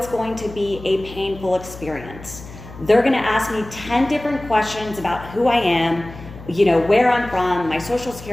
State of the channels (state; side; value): noise; left; hum, 15 dB below the sound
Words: going to be a painful experience. They're gonna ask me 10 different questions about who I am, where I'm from, my social